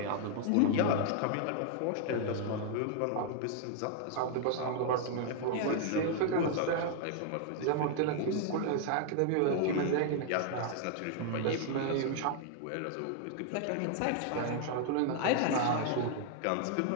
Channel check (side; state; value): both; different; correlation 0.00